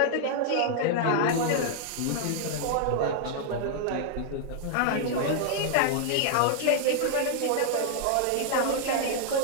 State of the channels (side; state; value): both; different; correlation -0.01